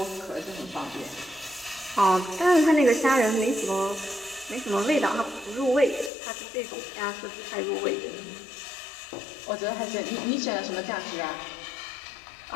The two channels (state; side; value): drops out; right; at 6.1 s